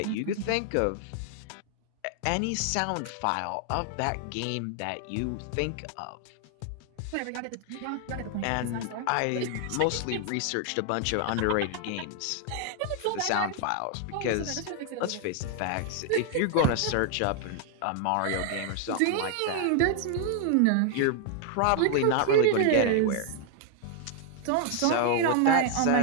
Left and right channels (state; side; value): different; both; correlation 0.00